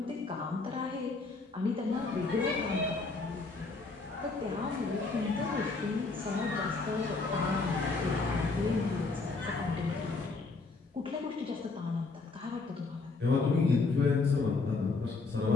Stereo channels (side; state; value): right; quieter; 3.9 dB